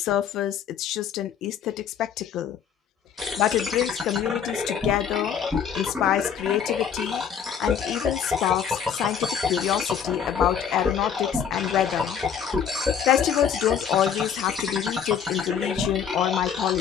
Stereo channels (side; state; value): right; quieter; 7.8 dB